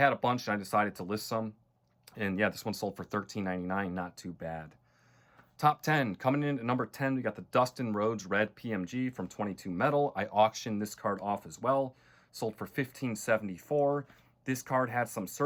a bunch and I decided to list some. And yeah, this one sold for $13.99, not too bad. Top 10, coming in at number 10, we got the Dustin Rhodes Red PMG from 22 Metal. I auctioned this card off as well. Sold for $15.74. This card had some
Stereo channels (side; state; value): both; identical; correlation 1.00